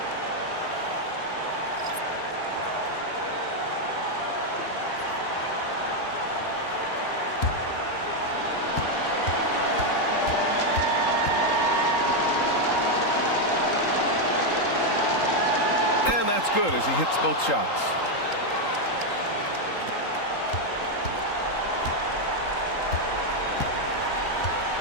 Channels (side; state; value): right; late; 3.8 ms